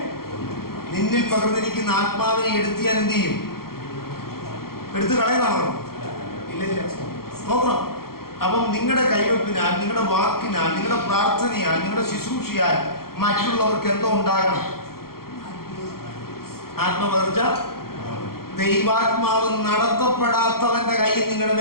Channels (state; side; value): late; right; 0.93 ms